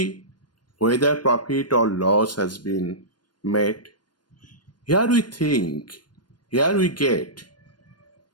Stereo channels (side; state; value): right; late; 0.71 ms